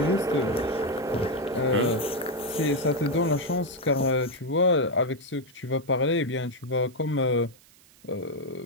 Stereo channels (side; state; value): right; noise; hiss, 27 dB below the sound